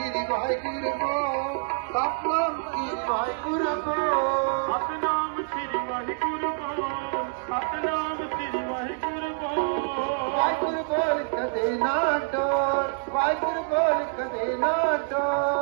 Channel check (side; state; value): left; silent; digital silence